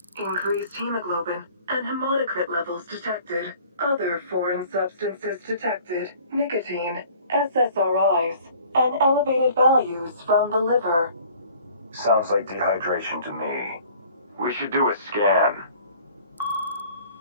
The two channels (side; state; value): both; inverted; correlation -0.51